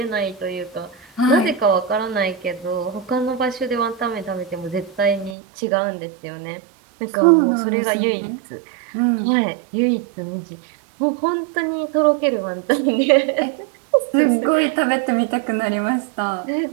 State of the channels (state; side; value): drops out; left; at 5.4 s